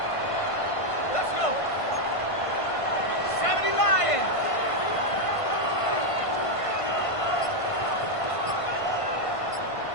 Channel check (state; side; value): late; right; 1.5 ms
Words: Let's go. 70 Lions.